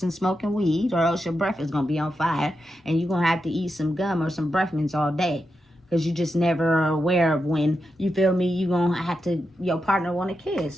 and smoking weed, or else your breath is going to be on fire and you're going to have to eat some gum or some breath mints all day. Because you just never are aware of when, you feel me, you going to have to, your partner want a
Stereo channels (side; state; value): both; normal; correlation 0.87